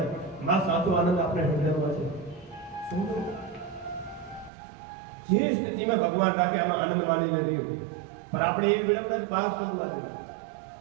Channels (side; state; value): left; drops out; at 4.5 s